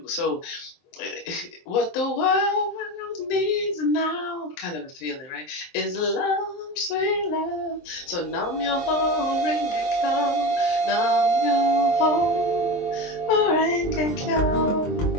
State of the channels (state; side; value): late; right; 23 ms